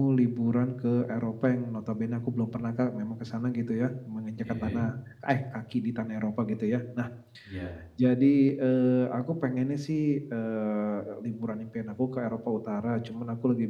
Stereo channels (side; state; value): both; identical; correlation 1.00